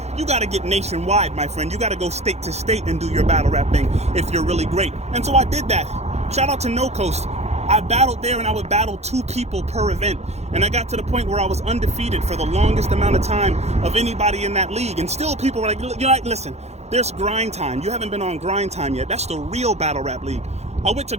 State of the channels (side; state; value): left; late; 0.31 ms